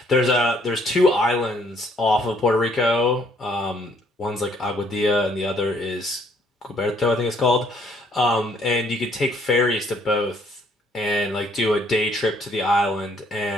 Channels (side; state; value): both; normal; correlation 0.65